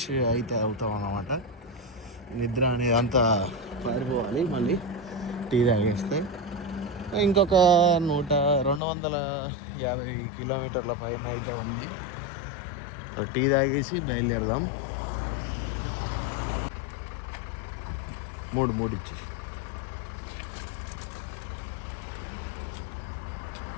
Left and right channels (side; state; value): right; drops out; at 8.8 s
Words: అయితే అవుతాం అన్నమాట. నిద్ర అనేది అంతా పారిపోవాలి మళ్ళీ టీ తాగేస్తే. ఇంకొక 250 కిలోమీటర్ల పైన అయితే ఉంది. టీ తాగేసి బయలుదేరదాం. మూడు ఇచ్చి